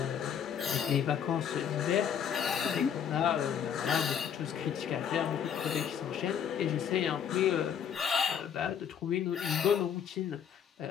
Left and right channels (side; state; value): right; quieter; 8.2 dB